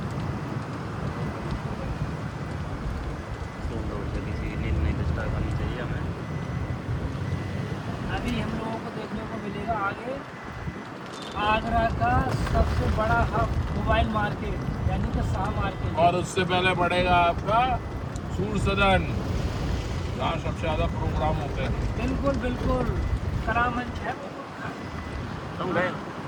किसी नींद नहीं डिस्टर्ब करनी चाहिए हमें। अभी हम लोगों को देखने को मिलेगा आगे आगरा का सबसे बड़ा हब मोबाइल मार्केट, यानी कि शाह मार्केट। और उससे पहले पड़ेगा आपका सूर सदन, जहाँ सबसे ज्यादा प्रोग्राम होते हैं। बिल्कुल बिल्कुल करामंच है। तुम गए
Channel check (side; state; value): both; identical; correlation 1.00